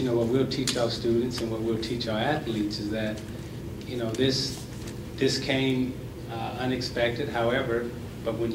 what we'll teach our students and what we'll teach our athletes is that this came unexpected. However, but when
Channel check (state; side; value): identical; both; correlation 1.00